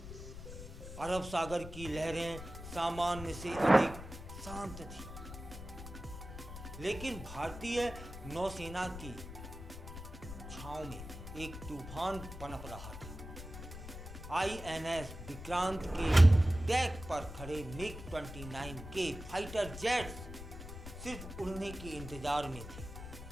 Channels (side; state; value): left; noise; rumble, 11 dB below the sound